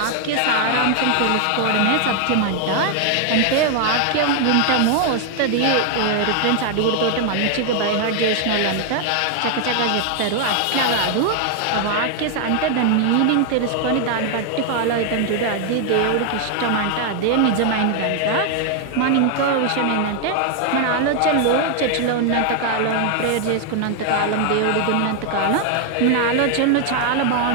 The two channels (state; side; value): different; both; correlation 0.00